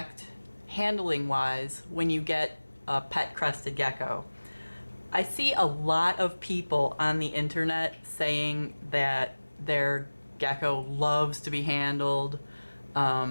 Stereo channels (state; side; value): inverted; both; correlation -1.00